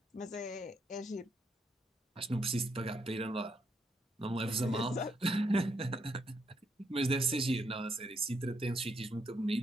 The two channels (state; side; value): normal; both; correlation 0.76